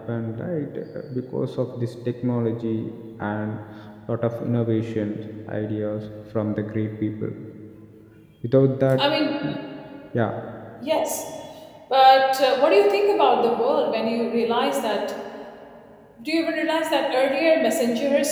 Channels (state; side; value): identical; both; correlation 1.00